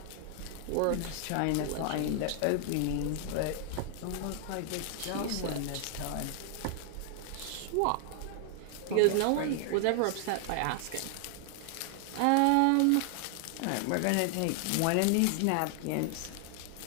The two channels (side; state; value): both; different; correlation 0.00